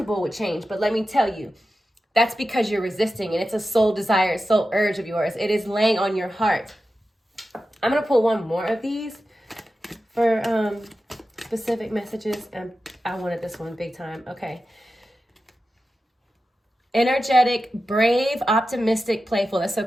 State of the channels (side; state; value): both; normal; correlation 0.92